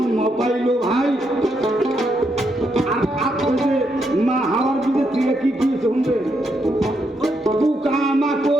পাইলো ভাই। আর আপনি যে মা হাওয়ার বীজের থেকে কি কি শুনবে, পোকা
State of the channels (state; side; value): normal; both; correlation 0.79